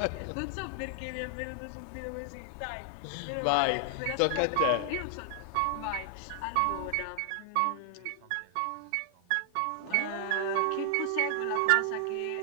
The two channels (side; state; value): both; different; correlation 0.00